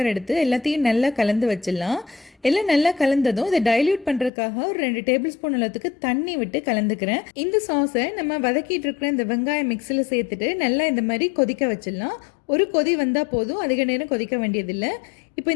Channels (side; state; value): right; drops out; at 4.3 s